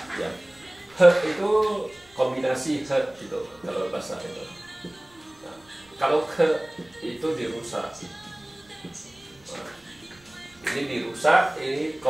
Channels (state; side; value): noise; right; rumble, 30 dB below the sound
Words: ya. He itu kombinasi he gitu kalau bahasa itu. Nah, kalau ke itu dirusak. Nah, ini dirusak, ini